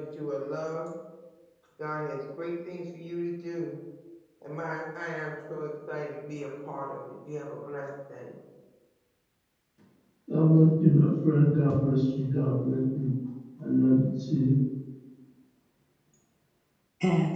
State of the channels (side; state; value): both; identical; correlation 1.00